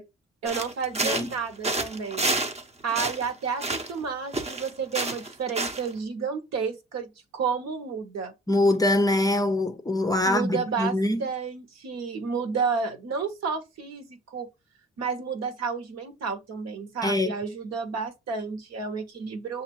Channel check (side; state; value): both; normal; correlation 0.41